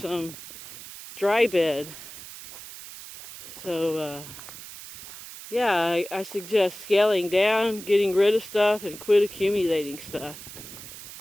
dry bed. So, yeah, I suggest scaling down, getting rid of stuff, and quit accumulating stuff.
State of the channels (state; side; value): noise; right; hiss, 14 dB below the sound